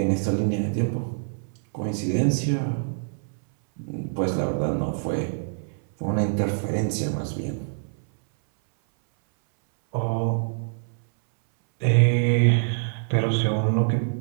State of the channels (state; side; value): silent; left; 60 dB below the other